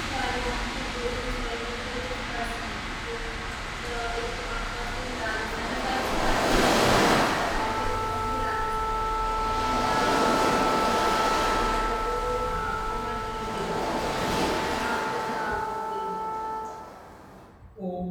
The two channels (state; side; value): identical; both; correlation 1.00